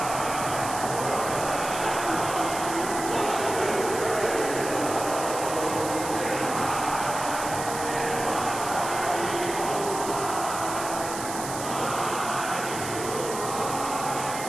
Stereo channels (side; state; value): right; noise; hiss, 8 dB below the sound